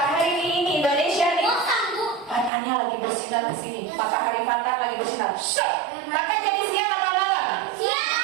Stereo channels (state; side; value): drops out; left; at 2.5 s